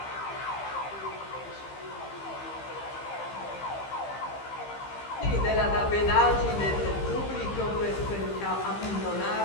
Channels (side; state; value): right; late; 15 ms